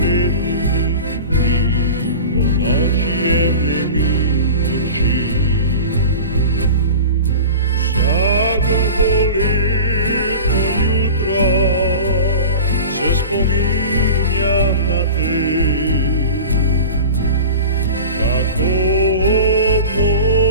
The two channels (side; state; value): both; inverted; correlation -0.35